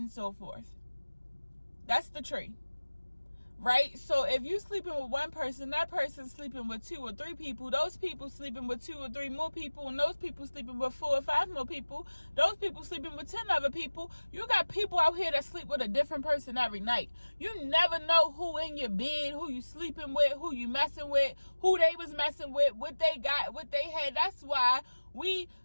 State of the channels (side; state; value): both; inverted; correlation -1.00